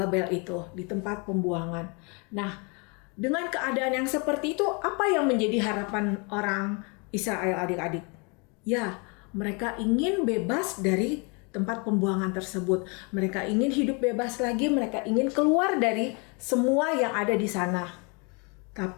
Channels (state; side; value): quieter; right; 32.6 dB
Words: itu, di tempat pembuangan. Nah, dengan keadaan yang seperti itu, apa yang menjadi harapan orang Israel adik-adik? Ya, mereka ingin bebas dari tempat pembuangan tersebut. Mereka ingin hidup bebas lagi, mereka ingin keluar dari semua yang ada di sana.